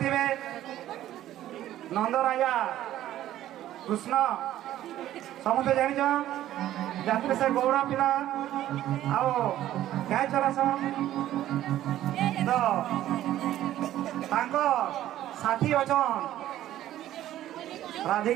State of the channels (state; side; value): quieter; left; 13.1 dB